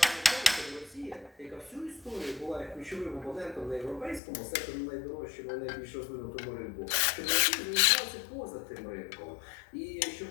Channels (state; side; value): drops out; right; at 4.2 s